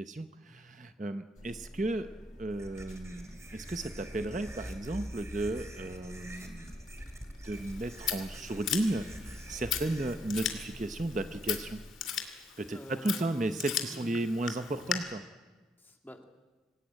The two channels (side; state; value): both; normal; correlation 0.73